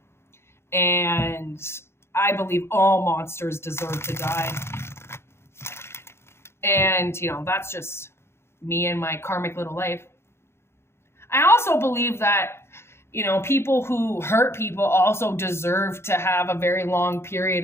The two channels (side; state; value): right; late; 0.12 ms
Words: And I believe all monsters deserve to die. And, you know, that's just me and my karmic little life. I also believe that, you know, people who hurt people also deserve to have a very long